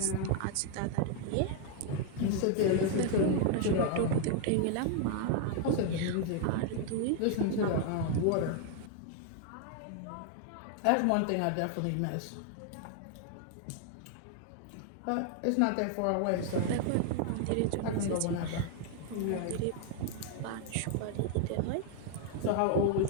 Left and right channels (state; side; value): different; both; correlation 0.00